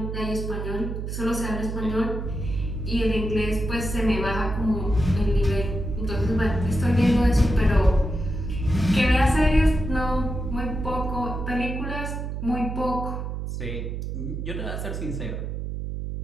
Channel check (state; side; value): noise; right; hum, 4 dB below the sound